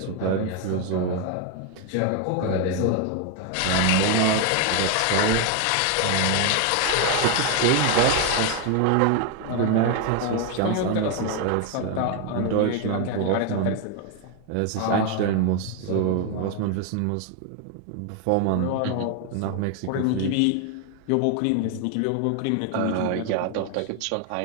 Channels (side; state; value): both; different; correlation 0.01